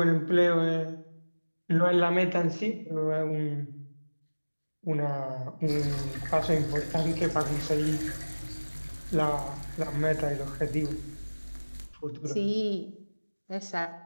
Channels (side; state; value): both; inverted; correlation -1.00